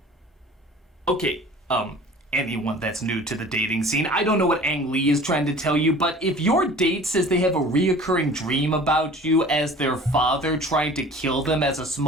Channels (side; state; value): both; normal; correlation 0.44